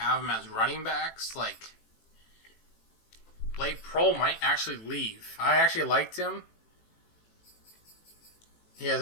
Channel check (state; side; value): late; right; 18 ms